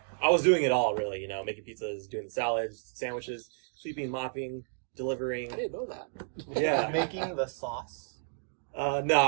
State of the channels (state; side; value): silent; left; digital silence